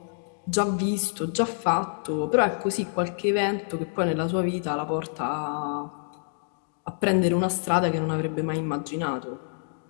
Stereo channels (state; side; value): silent; right; digital silence